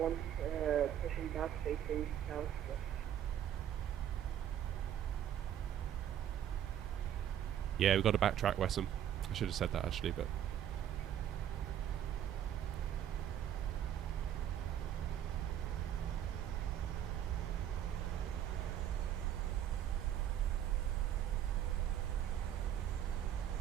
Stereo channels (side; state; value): left; quieter; 10.3 dB